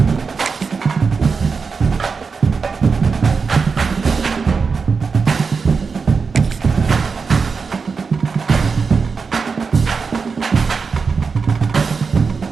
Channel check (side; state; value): left; quieter; 5.1 dB